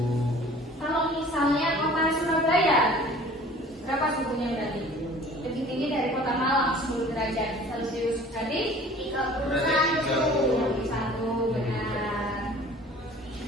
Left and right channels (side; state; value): both; normal; correlation 0.48